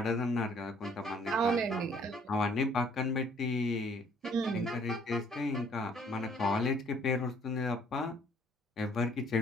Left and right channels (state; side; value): normal; both; correlation 0.60